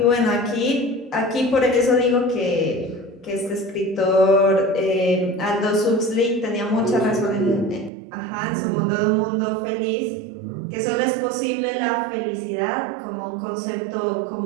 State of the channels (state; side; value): drops out; left; at 7.9 s